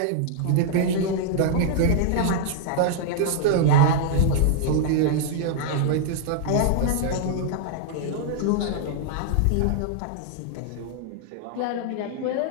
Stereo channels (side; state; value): both; different; correlation -0.01